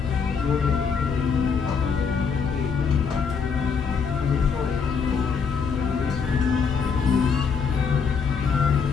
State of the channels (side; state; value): right; quieter; 5.9 dB